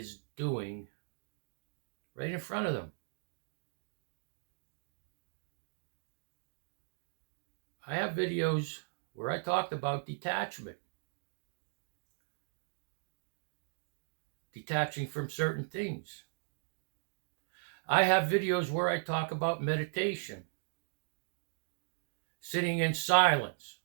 doing right in front of them. I have videos where I talked about detachment. Detaching from certain things. I have videos where I talk about meditation. Sitting in silence.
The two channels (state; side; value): silent; left; digital silence